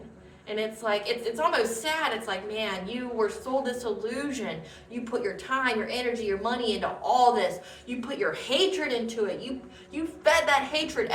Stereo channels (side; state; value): both; identical; correlation 1.00